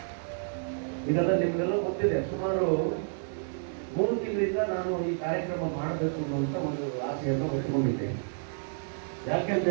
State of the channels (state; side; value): silent; left; digital silence